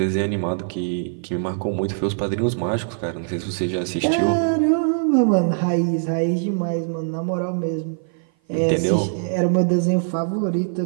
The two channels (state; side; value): silent; left; 55 dB below the other